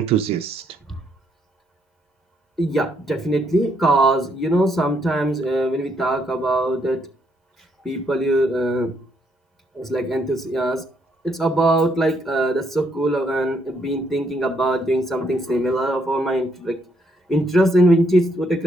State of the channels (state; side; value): normal; both; correlation 0.73